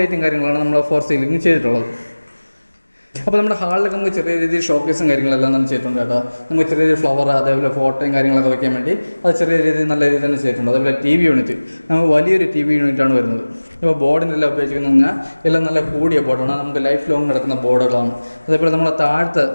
ലൈറ്റും കാര്യങ്ങളാണ് നമ്മൾ 4 സീലിംഗ് ചെയ്തിട്ടുള്ളത്. അപ്പോൾ നമ്മുടെ ഹാളിലൊക്കെ നമുക്ക് ചെറിയ രീതിയിൽ ഷോക്കേസും കാര്യങ്ങളെല്ലാം തന്നെ ചെയ്തിട്ടുണ്ട് കേട്ടോ. നമുക്ക് ചെറിയ രീതിയിൽ ഫ്ലവർ അതേപോലെ ഫോട്ടോയും കാര്യങ്ങളൊക്കെ വയ്ക്കാൻ വേണ്ടി അത് ചെറിയ രീതിയിൽ നല്ല രീതിയിൽ തന്നെ ചെയ്തിട്ടുണ്ട്. അതേപോലെ TV യൂണിറ്റ്, നമുക്ക് വലിയൊരു TV യൂണിറ്റാണ് വരുന്നത്. ഇപ്പോൾ ബോർഡിനെല്ലാം ഉപയോഗിക്കുന്നത് പറഞ്ഞാൽ എല്ലാം നല്ല കൂടിയ ബോർഡാണ്, നമുക്ക് ലൈഫ് ലോങ് നടക്കുന്ന ബോർഡുകളാണ്. അതേപോലെ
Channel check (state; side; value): inverted; both; correlation -1.00